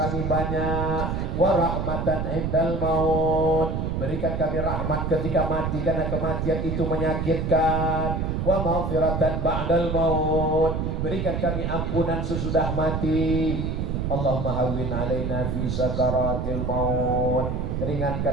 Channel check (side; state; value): right; noise; rumble, 1 dB below the sound